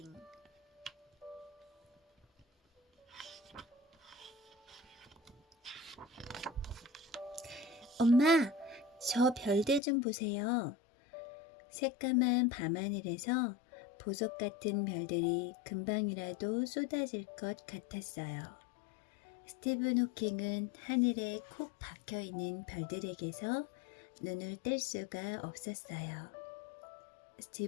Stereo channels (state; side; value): drops out; right; at 9.8 s